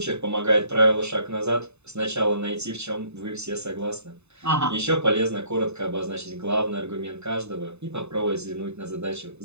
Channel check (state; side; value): late; left; 0.81 ms